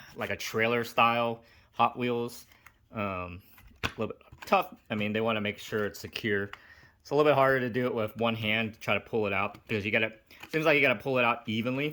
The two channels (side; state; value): both; identical; correlation 1.00